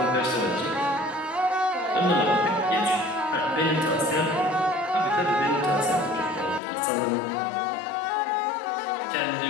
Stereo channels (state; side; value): drops out; right; at 6.6 s